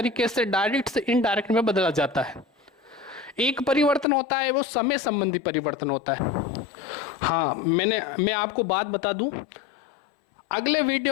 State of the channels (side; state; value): right; drops out; at 4.0 s